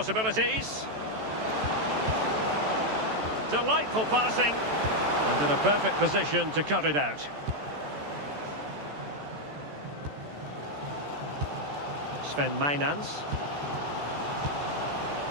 Delightful passing. And in a perfect position to cut it out. Sven Mainans.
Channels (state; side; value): late; left; 14 ms